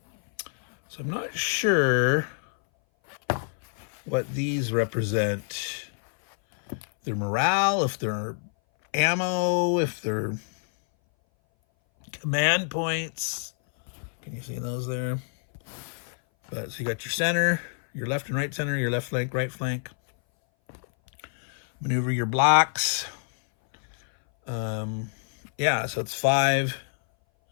So I'm not sure what these represent. Their morale, if they're ammo, if they're command points. Can you see those there? But so you got your center, your left and right center, your left flank, right flank. Maneuver your blocks. Yeah, so it's 5,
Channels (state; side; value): silent; right; 58 dB below the other